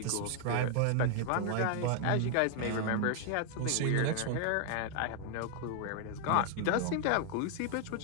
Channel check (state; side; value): different; both; correlation 0.00